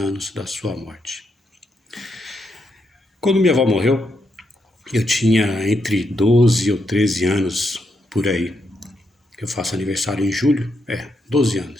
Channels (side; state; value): both; normal; correlation 0.80